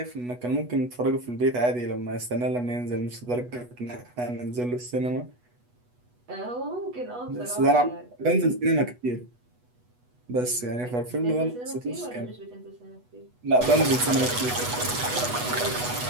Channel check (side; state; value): left; late; 8.2 ms